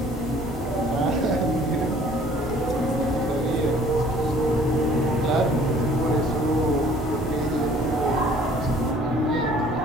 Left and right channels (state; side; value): normal; both; correlation 0.55